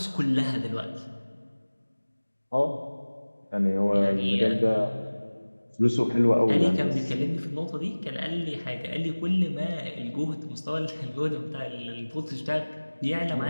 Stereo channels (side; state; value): both; inverted; correlation -1.00